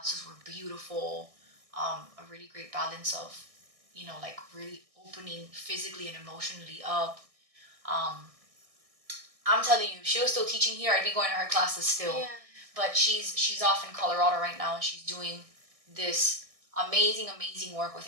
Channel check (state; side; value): late; left; 1.6 ms